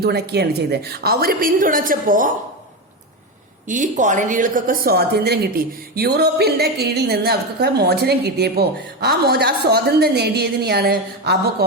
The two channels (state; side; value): normal; both; correlation 0.15